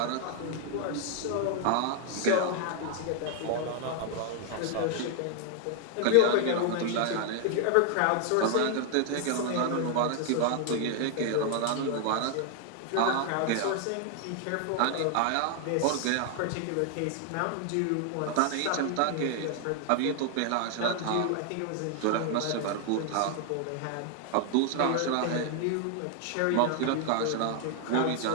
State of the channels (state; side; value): different; both; correlation 0.00